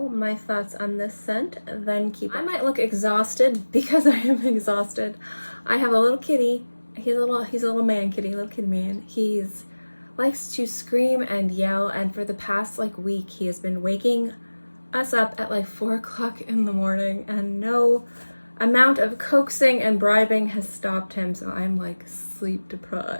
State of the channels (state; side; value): inverted; both; correlation -1.00